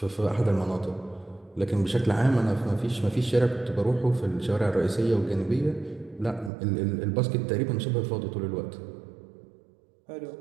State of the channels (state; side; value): drops out; left; at 6.5 s